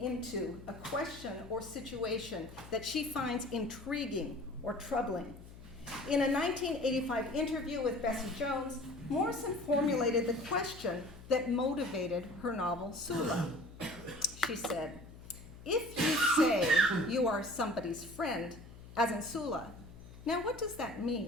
a question or situation that she finds intriguing or troubling. In a 1985 interview with Bessie Jones, Morrison formulated the question that motivated her novel, Sula. She said, if you say you are somebody's friend, as in Sula, now what does that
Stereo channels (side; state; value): left; noise; hum, 17 dB below the sound